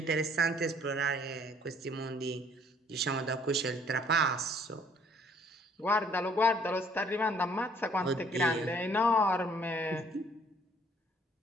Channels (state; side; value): normal; both; correlation 0.60